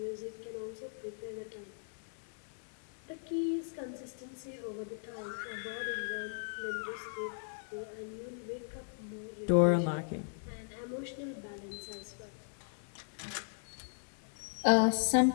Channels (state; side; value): silent; right; digital silence